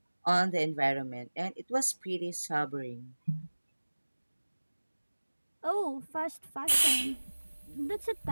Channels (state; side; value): inverted; both; correlation -1.00